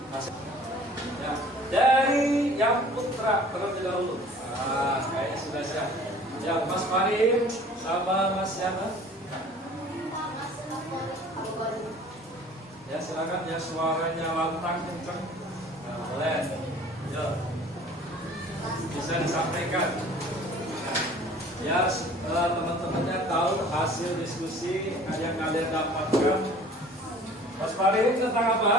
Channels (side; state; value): both; normal; correlation 0.49